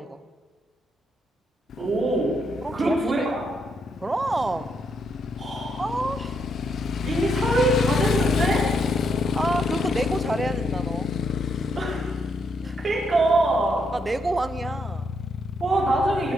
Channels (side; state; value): both; normal; correlation 0.76